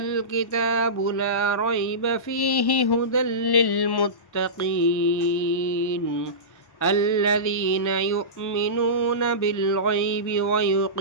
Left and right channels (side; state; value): right; late; 1.1 ms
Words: لا ريب فيه هدى للمتقين الذين يؤمنون بالغيب